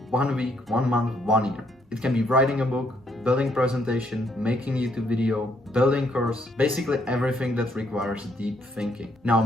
1 week, 1 month, 1 year. It can be writing a book, building presentation, making YouTube video, building course, basically everything that requires deep thinking. Now,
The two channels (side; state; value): both; normal; correlation 0.71